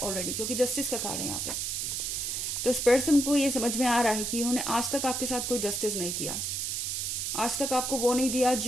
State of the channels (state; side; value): noise; right; hiss, 1 dB below the sound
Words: क्योंकि जस्टिस का कार्ड है यहाँ पे। तो इस पर्सन को ये समझ में आ रहा है कि उन्होंने आज तक आपके साथ कोई जस्टिस नहीं किया, आज तक आपको वो नहीं दिया